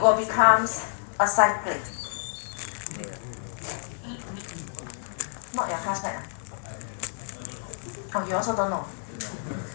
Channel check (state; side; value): silent; right; digital silence